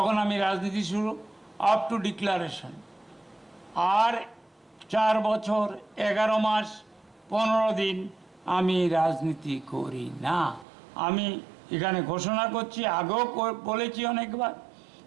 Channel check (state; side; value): drops out; left; at 10.7 s